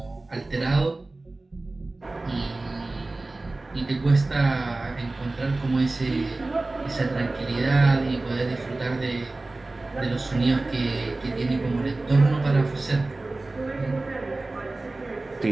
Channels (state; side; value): quieter; left; 3.1 dB